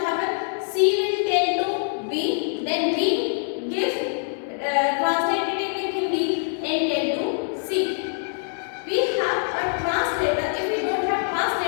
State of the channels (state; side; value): silent; right; digital silence